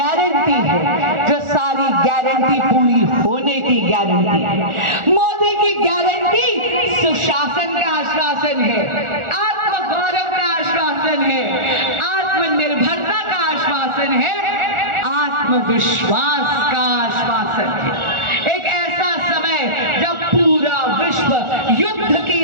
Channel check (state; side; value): late; left; 1.4 ms